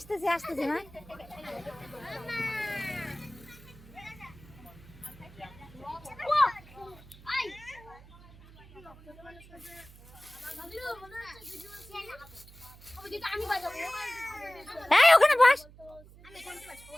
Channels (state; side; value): noise; right; hum, 21 dB below the sound